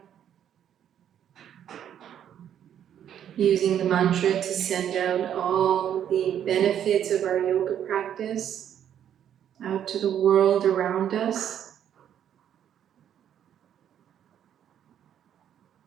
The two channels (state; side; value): quieter; left; 9.8 dB